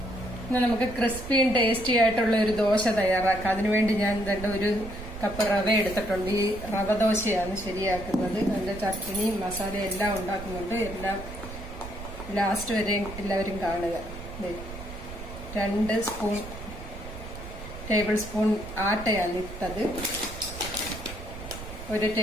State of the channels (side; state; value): right; noise; rumble, 11 dB below the sound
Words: ഇന്ന് നമുക്ക് ക്രിസ്പിയും ടേസ്റ്റി ആയിട്ടുള്ള ഒരു ദോശ തയ്യാറാക്കാം. അതിനുവേണ്ടി ഞാൻ ഒരു കപ്പ് റവ എടുത്തിട്ടുണ്ട്. ഈ റവ ദോശയാണ് ശരിയാക്കുന്നത്. അതിന്റെ ചട്നി മസാല എല്ലാം ഉണ്ടാക്കുന്നുണ്ട്. എല്ലാം ലാസ്റ്റ് വരെ എല്ലാവരും കാണുക. 2 ടേബിൾ സ്പൂൺ ആട്ടയാണ് ഇട്ടത്, 1